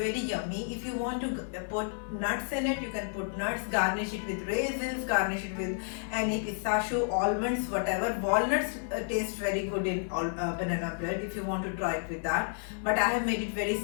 yummy. If you want to put nuts in it, you can put nuts, garnish it with raisins, garnish it with any pistachio, almonds, whatever. Walnuts taste very good in banana bread if you want to try it with that. But I have made it very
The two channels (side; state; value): right; silent; 57 dB below the other